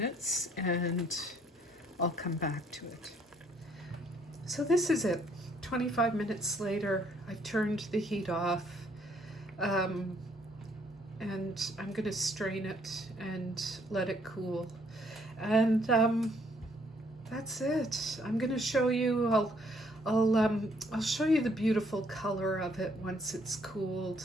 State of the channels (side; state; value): both; normal; correlation 0.66